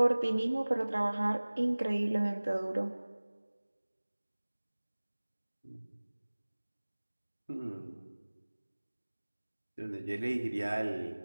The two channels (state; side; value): inverted; both; correlation -1.00